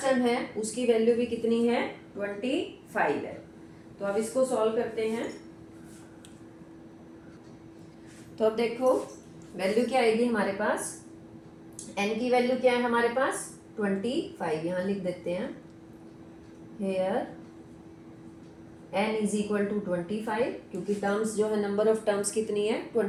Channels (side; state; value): both; identical; correlation 1.00